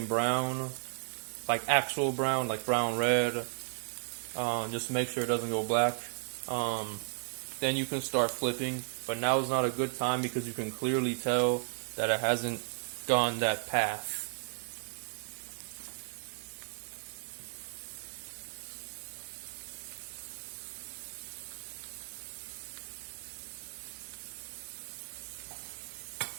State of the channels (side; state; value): left; silent; digital silence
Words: brown, like actual brown, like brown red, just make sure it doesn't go black. Then you can start flipping, but now is not a good time because you can clearly tell that it hasn't gone that path.